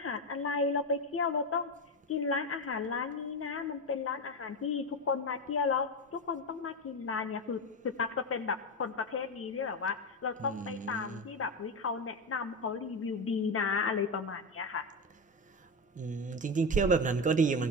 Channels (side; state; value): both; normal; correlation 0.15